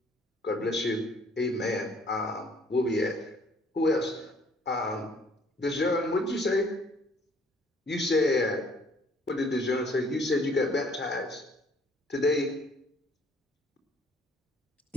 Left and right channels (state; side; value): normal; both; correlation 0.60